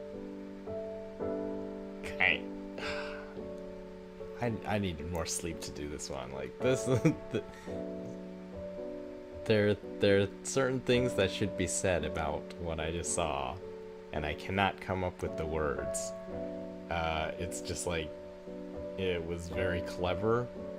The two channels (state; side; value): identical; both; correlation 1.00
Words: I I needed more sleep to do this one. Like this, there are certain things that should be said about what I just saw, and I cannot come up with the words. It's just like it was very clever